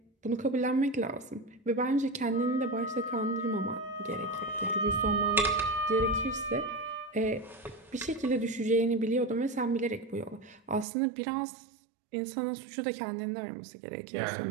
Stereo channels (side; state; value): left; drops out; at 10.9 s